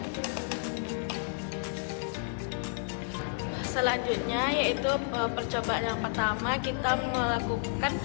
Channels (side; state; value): right; silent; digital silence